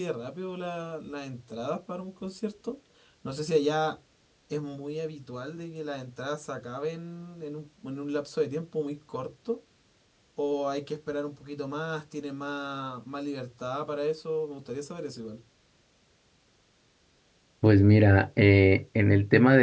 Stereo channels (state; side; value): identical; both; correlation 1.00